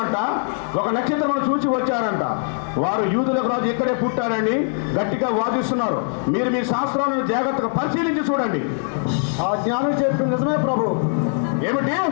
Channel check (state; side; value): silent; right; 58 dB below the other